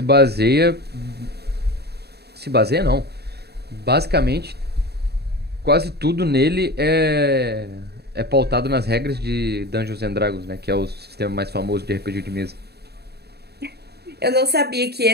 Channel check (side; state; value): left; late; 0.47 ms